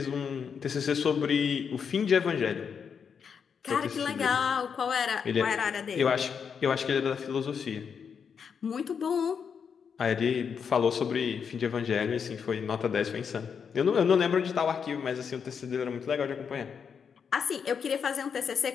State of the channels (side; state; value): right; quieter; 6.7 dB